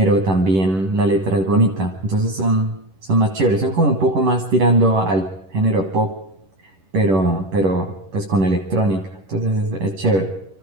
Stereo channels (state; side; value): late; left; 11 ms